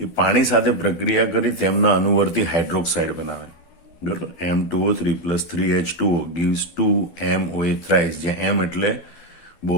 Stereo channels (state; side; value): late; right; 12 ms